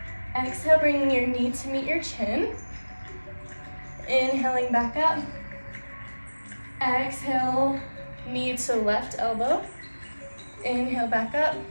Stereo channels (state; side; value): inverted; both; correlation -1.00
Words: Exhale, bringing your knee to meet your chin. Inhaling back up. Exhale, knee to left elbow. Inhale back up.